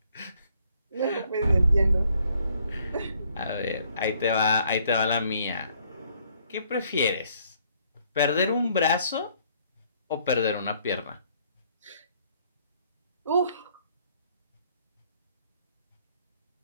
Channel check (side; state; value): both; inverted; correlation -0.66